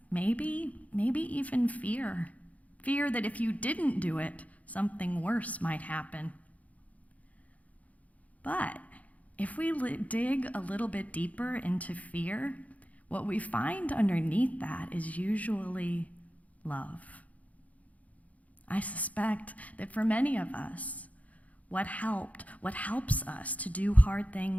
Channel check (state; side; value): late; right; 0.071 ms